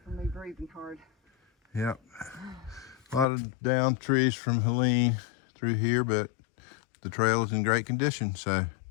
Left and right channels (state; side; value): drops out; right; at 3.2 s